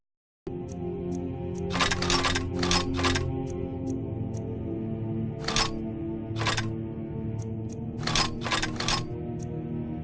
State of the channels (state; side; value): identical; both; correlation 1.00